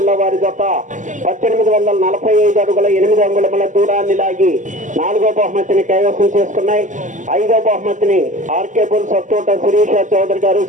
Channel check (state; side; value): late; left; 0.37 ms